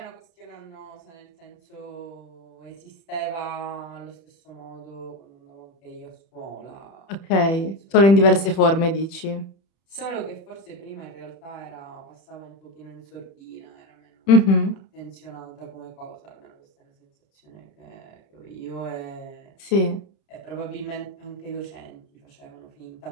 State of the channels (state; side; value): late; right; 31 ms